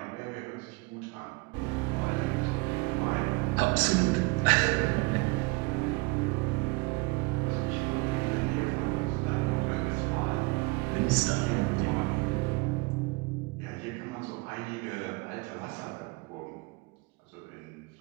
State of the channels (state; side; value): quieter; left; 26.1 dB